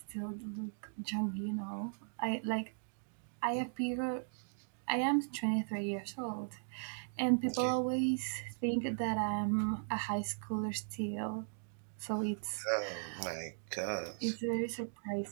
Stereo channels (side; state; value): left; silent; digital silence